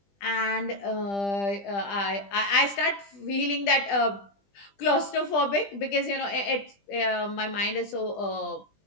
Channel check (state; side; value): late; right; 20 ms